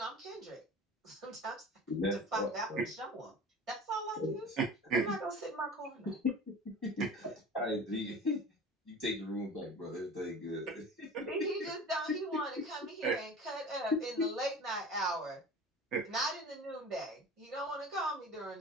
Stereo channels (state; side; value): normal; both; correlation 0.38